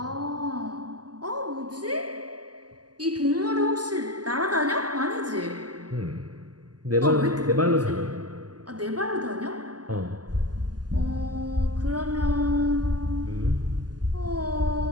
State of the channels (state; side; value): late; left; 0.69 ms